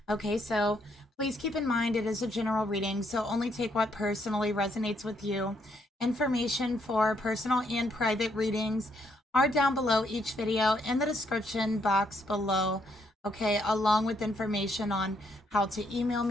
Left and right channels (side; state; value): both; normal; correlation 0.73